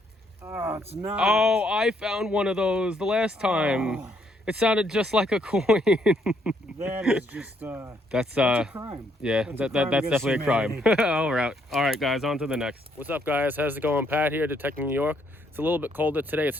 Oh, it's not. Oh, I found one of those the last time. Oh. It sounded just like a coin. That is just that's a crime. Yeah, that's definitely a crime. humanity. All right, guys, on to the next. What's up, guys? How's it going? Pat here, Detecting New York. It's a little bit colder today. It's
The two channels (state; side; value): normal; both; correlation 0.71